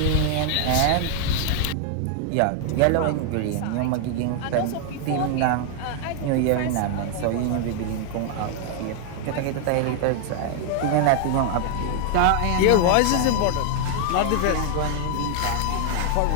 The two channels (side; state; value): both; different; correlation 0.00